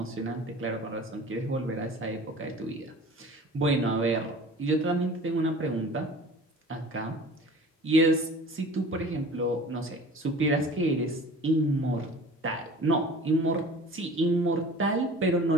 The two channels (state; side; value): normal; both; correlation 0.42